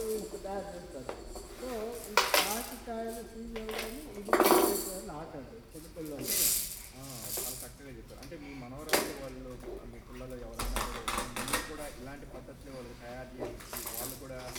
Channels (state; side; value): identical; both; correlation 1.00